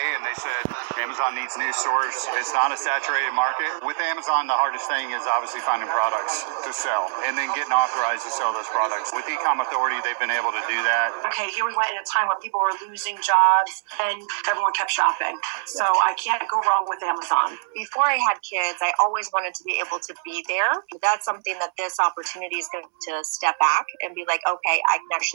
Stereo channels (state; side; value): silent; left; digital silence